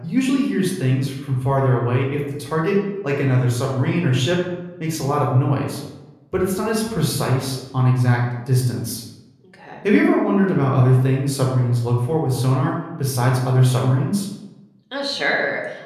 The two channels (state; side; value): identical; both; correlation 1.00